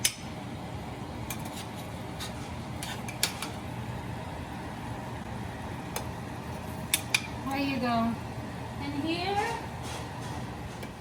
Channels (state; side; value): identical; both; correlation 1.00